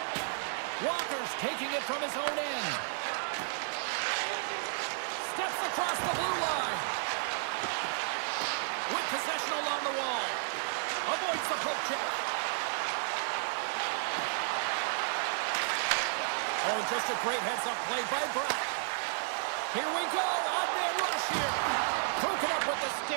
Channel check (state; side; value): silent; left; digital silence